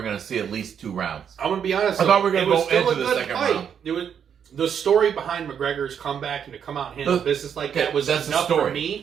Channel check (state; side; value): quieter; left; 8.0 dB